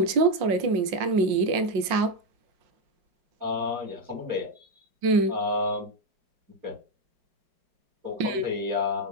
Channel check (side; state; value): left; late; 5.5 ms